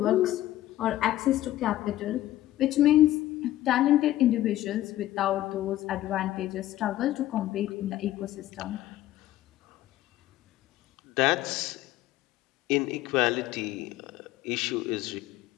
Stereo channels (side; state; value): right; quieter; 14.4 dB